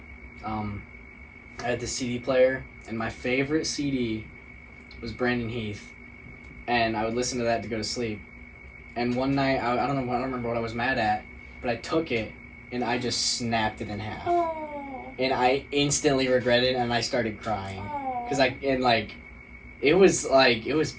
I had the CD player, and my favorite CD was Brandon Heath, and I would listen to that to go to sleep. And one night, I don't remember what I was mad at, but I took it, and I just snapped it in half. Oh. And I instantly regretted it, and I started crying. Oh. Because it was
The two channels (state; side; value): identical; both; correlation 1.00